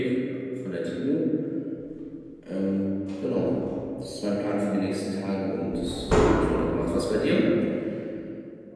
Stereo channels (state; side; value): identical; both; correlation 1.00